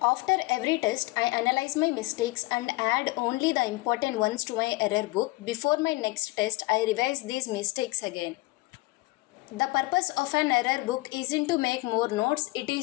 every test, I analyze my mistakes and add only the important ones to my error book. Before my next test, I revise these mistakes again. The purpose of an error book isn't to make more notes, it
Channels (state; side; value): quieter; right; 21.8 dB